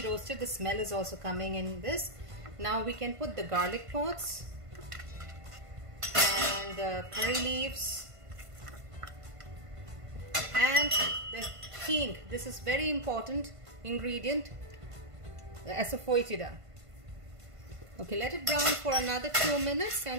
roasted. The smell is also coming in this. Now we can put the garlic pods and the curry leaves and the hing. This is very important ingredient, the asafoetida. Okay, let it brown for another 2 minutes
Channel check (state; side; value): late; left; 1.5 ms